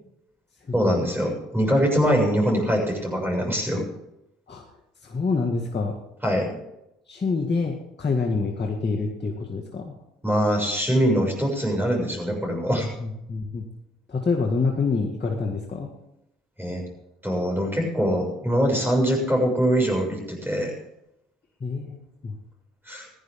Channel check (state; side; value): normal; both; correlation 0.74